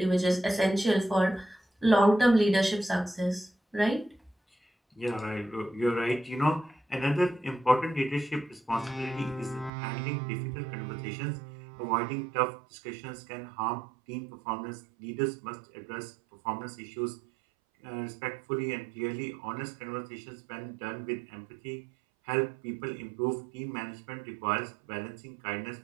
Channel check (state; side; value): drops out; left; at 9.7 s